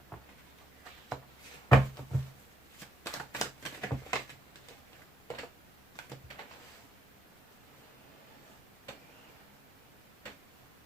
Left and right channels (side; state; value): both; normal; correlation 0.77